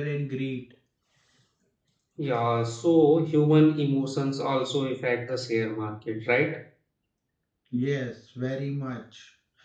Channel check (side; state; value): both; identical; correlation 1.00